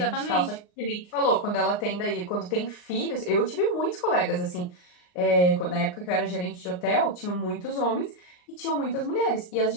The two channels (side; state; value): right; late; 39 ms